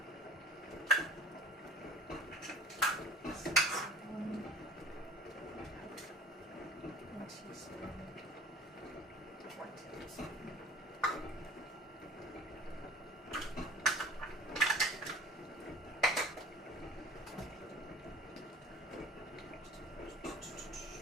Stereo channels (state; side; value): normal; both; correlation 0.43